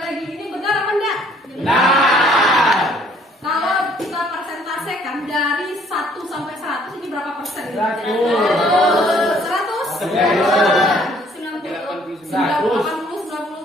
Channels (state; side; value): normal; both; correlation 0.60